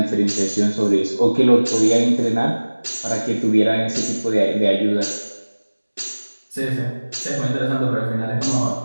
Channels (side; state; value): both; inverted; correlation -1.00